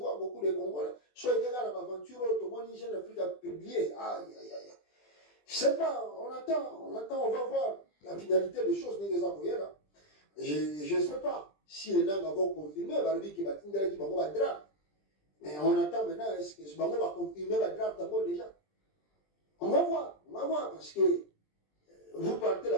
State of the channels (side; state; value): right; late; 20 ms